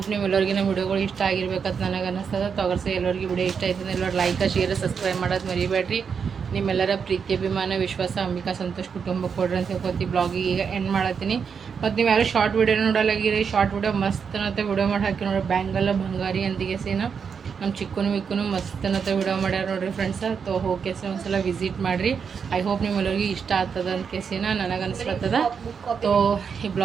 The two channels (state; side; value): quieter; left; 6.4 dB